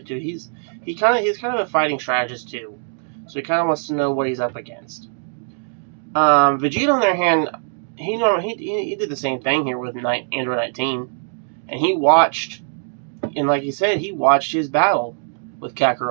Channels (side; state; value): left; silent; digital silence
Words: too. He's kind of a fighting strategist too, so he kind of wants to know what he's up against. Vegeta, on the other hand, he did the same thing here with Android 19, and he watched, and like he said, he watched his battle with